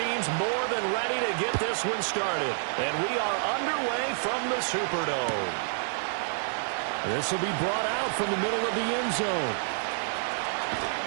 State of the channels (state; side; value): silent; left; digital silence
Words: more than ready to get this one started. And we are underway from the Superdome. This will be brought out from the middle of the end zone.